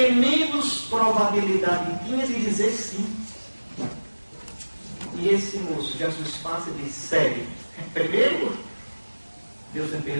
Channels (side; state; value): both; inverted; correlation -1.00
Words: menos probabilidade tinha de dizer sim. E esse moço, Jesus passa e diz: segue. Primeiro, Deus me